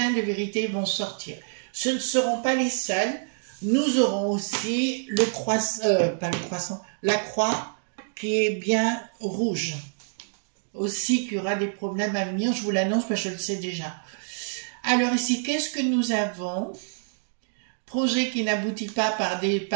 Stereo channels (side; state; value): left; silent; digital silence